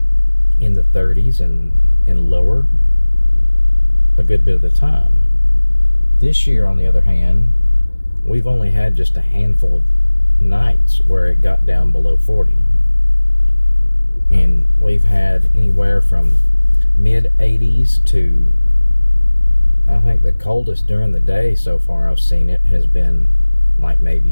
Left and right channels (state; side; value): inverted; both; correlation -1.00